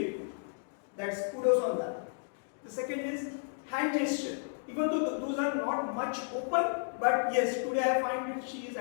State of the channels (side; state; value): right; silent; digital silence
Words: That's kudos on that. The second is hand gesture. Even though those are not much open, but yes, today I find that she is